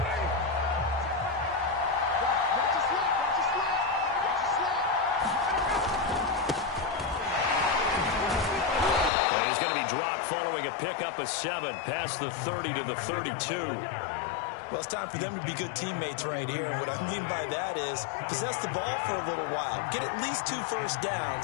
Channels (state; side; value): drops out; right; at 9.1 s